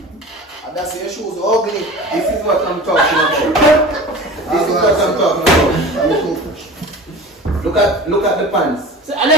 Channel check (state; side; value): normal; both; correlation 0.37